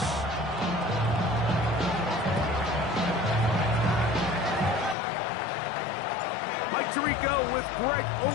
Mike Tirico with Greg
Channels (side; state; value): right; drops out; at 5.0 s